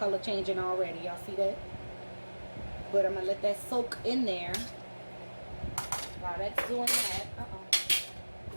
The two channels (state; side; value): inverted; both; correlation -1.00